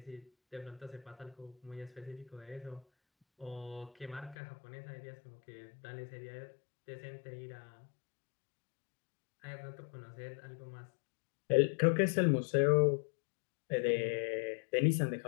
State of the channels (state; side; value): drops out; right; at 4.4 s